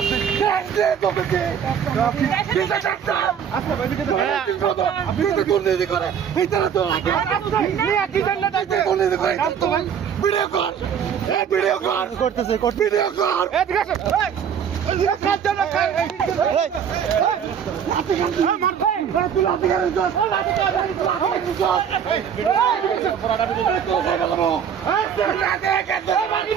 যান দিয়ে তোকে দিশে যাচ্ছে আচ্ছা ভাই দিকে আপনি তো দুর্নীতি করে এই তারা তো নিয়ে কি জন্য যাচ্ছে দুর্নীতি করে তো ভাই ভিডিও কর এই ভিডিও কর করতেছে ভিডিও কর এই ঠিক আছে এই কাজ জন্য কাজ এই মার তুই লাতে গেছিস লাতে গেছিস লাতে গেছিস মারি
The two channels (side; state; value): left; quieter; 8.0 dB